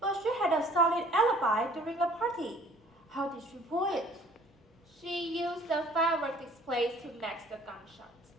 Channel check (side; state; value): both; normal; correlation 0.54